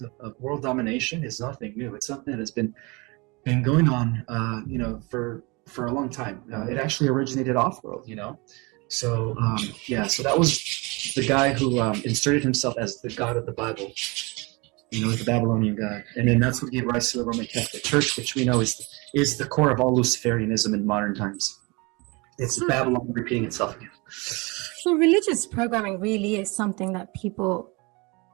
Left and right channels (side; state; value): left; quieter; 27.3 dB